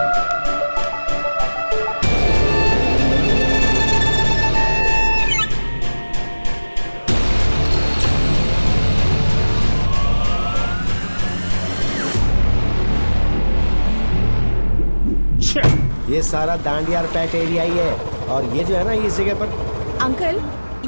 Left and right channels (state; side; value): inverted; both; correlation -1.00